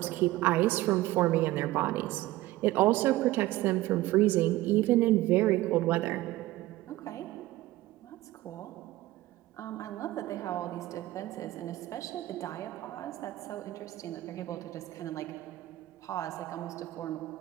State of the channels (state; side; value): quieter; left; 17.0 dB